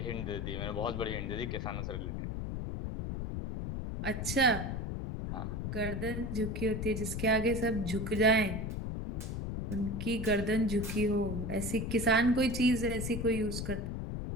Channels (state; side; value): noise; left; rumble, 3 dB below the sound